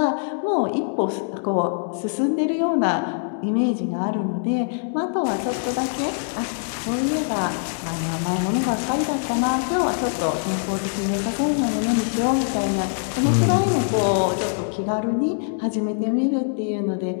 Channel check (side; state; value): right; silent; 63 dB below the other